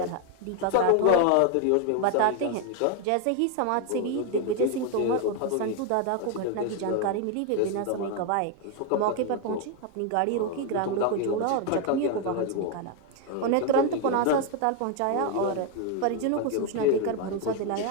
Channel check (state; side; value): different; both; correlation 0.01